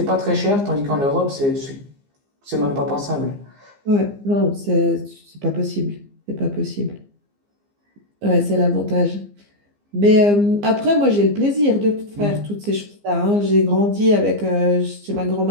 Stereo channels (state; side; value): late; left; 15 ms